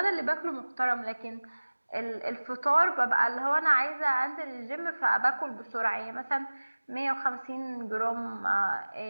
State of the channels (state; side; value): inverted; both; correlation -1.00